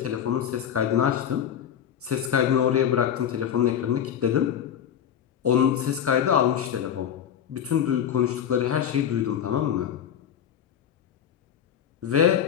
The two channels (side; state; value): right; quieter; 9.1 dB